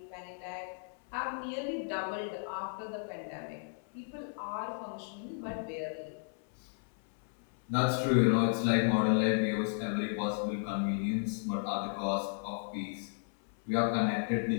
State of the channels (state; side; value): silent; right; 55 dB below the other